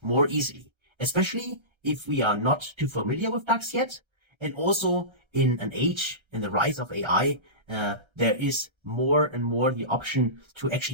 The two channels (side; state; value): left; late; 1.3 ms